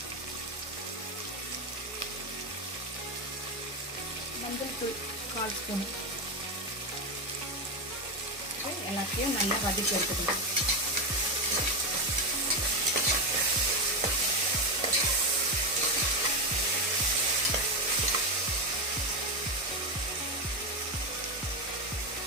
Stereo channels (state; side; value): normal; both; correlation 0.11